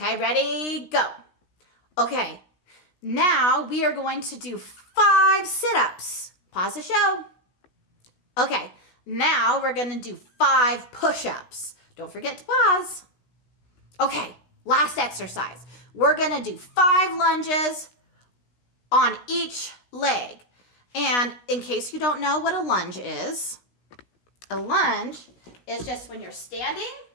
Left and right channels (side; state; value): right; late; 16 ms